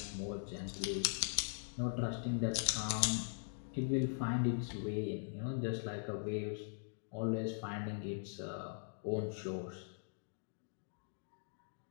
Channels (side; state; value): right; silent; digital silence